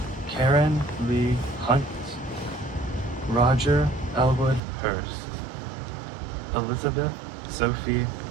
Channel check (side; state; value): left; drops out; at 4.6 s